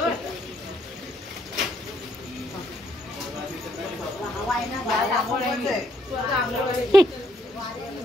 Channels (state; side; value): normal; both; correlation 0.71